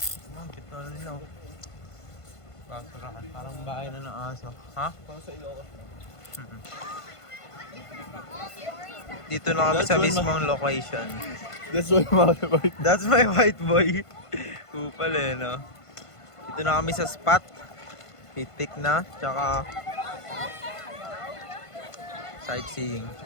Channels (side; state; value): right; late; 1.5 ms